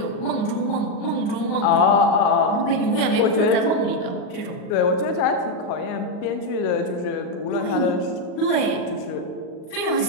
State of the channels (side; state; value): right; late; 38 ms